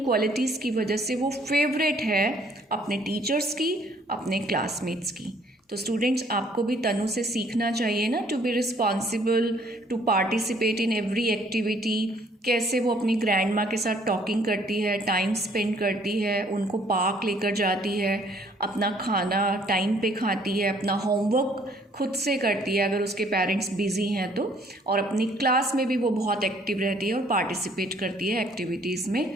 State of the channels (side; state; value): both; normal; correlation 0.61